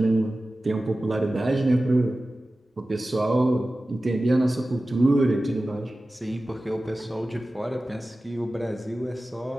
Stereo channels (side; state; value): both; normal; correlation 0.96